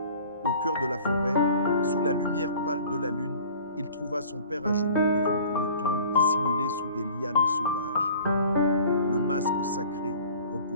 Au cœur de la forêt, sous la lumière pâle de la lune, il trouva son père à genoux devant une tombe dissimulée sous des lianes sauvages. Le masque sacré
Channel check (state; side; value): inverted; both; correlation -0.47